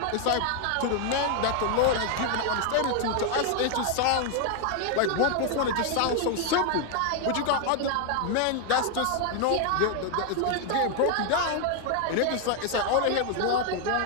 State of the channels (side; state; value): both; different; correlation 0.00